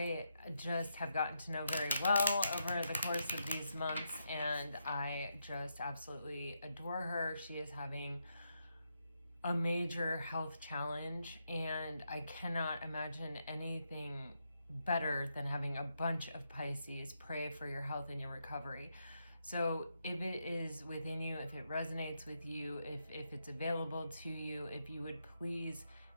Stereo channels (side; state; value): both; inverted; correlation -0.82